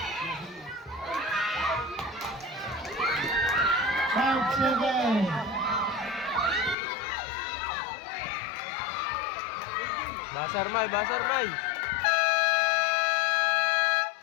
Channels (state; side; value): drops out; right; at 6.8 s